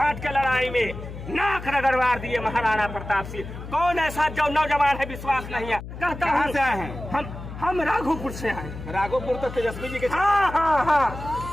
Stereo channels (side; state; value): left; noise; hum, 11 dB below the sound